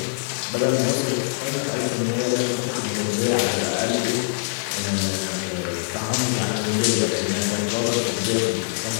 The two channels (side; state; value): right; silent; digital silence